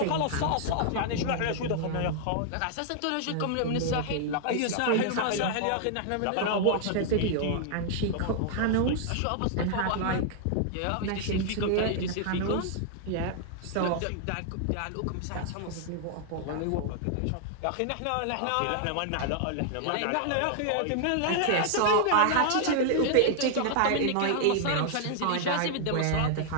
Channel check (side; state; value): both; different; correlation 0.00